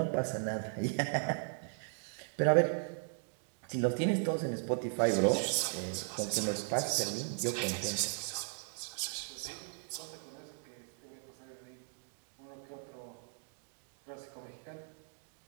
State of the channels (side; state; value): left; silent; digital silence